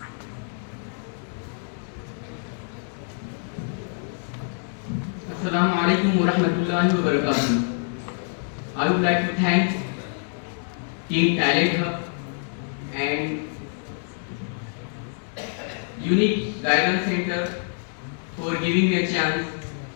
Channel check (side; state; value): right; silent; 57 dB below the other